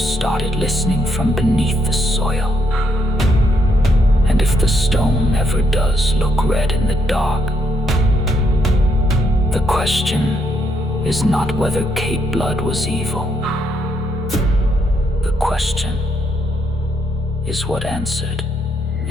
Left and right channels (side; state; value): both; normal; correlation 0.75